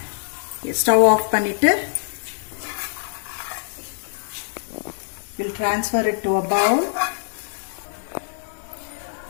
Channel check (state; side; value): silent; right; digital silence